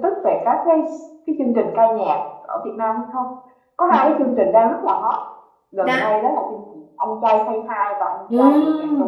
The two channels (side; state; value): both; identical; correlation 1.00